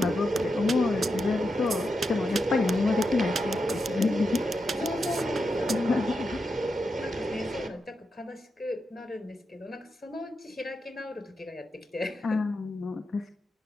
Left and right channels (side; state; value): both; normal; correlation 0.86